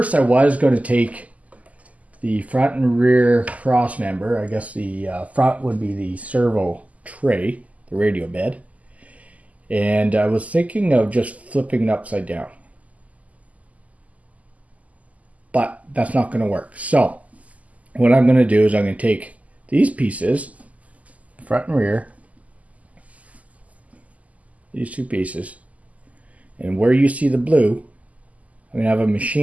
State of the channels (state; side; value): late; left; 0.073 ms